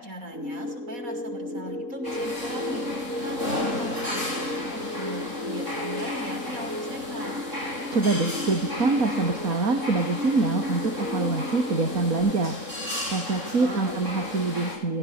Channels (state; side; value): late; left; 3.8 ms